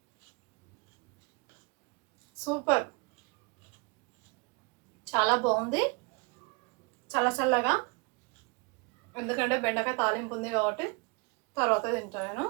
సూపర్, చాలా బాగుంది. చల్లగా, ఎందుకంటే బెండకాయ తాలింపు ఉంది కాబట్టి తర్వాత తింటాను నేను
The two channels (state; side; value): quieter; left; 28.3 dB